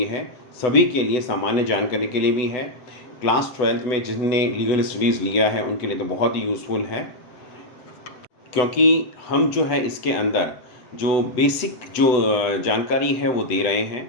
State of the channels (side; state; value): right; late; 8.0 ms